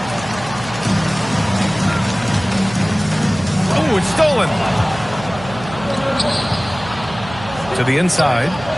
Oh, it's stolen. To the inside.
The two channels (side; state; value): right; noise; hum, 14 dB below the sound